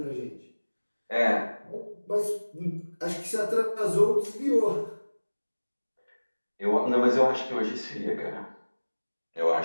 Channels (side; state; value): both; inverted; correlation -1.00